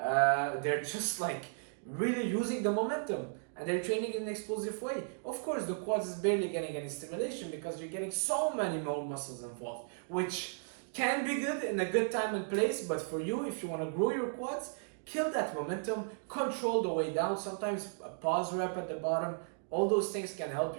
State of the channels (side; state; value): left; silent; digital silence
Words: just like really using the momentum. And they're training in an explosive way. Of course, the quads is barely getting any stimulation because you're getting so many more muscles involved, which can be good in a good time and place. But for you, if you want to grow your quads, kill that momentum, control the way down. Sometimes a pause rep at the bottom, all those things can help